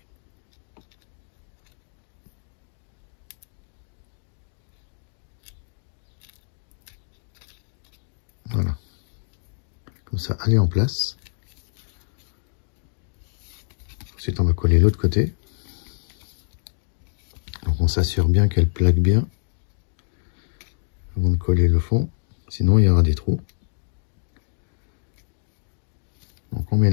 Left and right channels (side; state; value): right; silent; digital silence